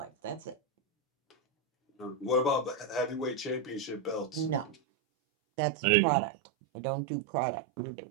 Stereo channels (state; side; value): drops out; left; at 4.8 s